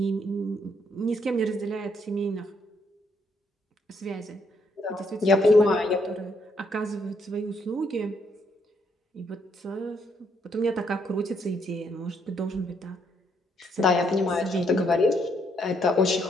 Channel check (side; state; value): both; normal; correlation 0.73